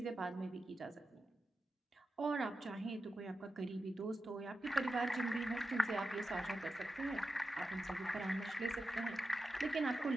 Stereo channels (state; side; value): normal; both; correlation 0.91